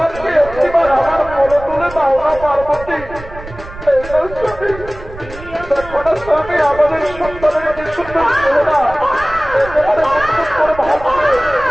একটিবার আমার মনে তুলে দাও না পার্বতী। দেখো না স্বামী আমাদের সন্তানের কি সুন্দর চেহারা করে ভাবছে।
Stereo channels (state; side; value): noise; right; rumble, 14 dB below the sound